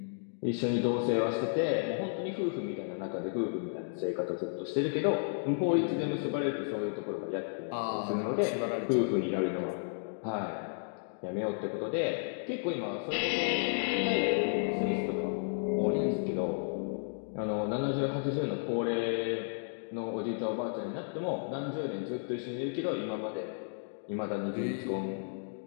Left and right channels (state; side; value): silent; right; digital silence